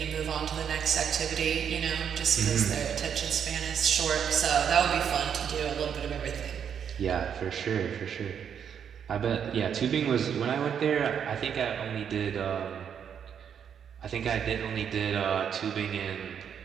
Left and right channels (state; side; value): quieter; left; 8.0 dB